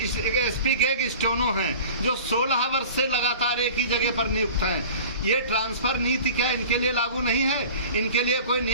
के एक स्टोनो हैं जो 16 वर्ष से लगातार एक ही जगह पर नियुक्त हैं। ये ट्रांसफर नीति क्या इनके लिए लागू नहीं है? इनके लिए कोई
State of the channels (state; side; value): inverted; both; correlation -0.40